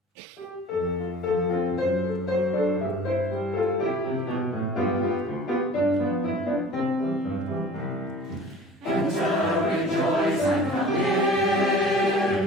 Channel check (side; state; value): both; normal; correlation 0.44